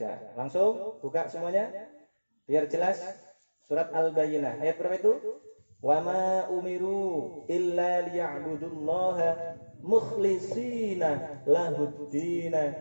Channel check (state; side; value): inverted; both; correlation -1.00